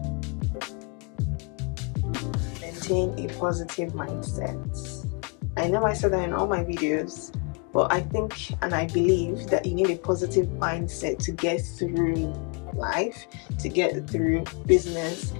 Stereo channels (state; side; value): quieter; right; 35.6 dB